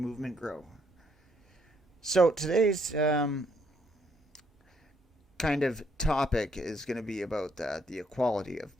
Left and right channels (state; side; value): normal; both; correlation 0.70